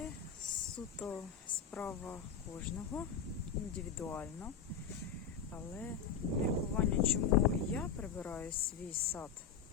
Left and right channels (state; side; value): quieter; right; 6.9 dB